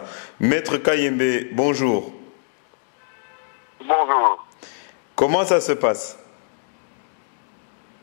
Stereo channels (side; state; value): right; silent; 60 dB below the other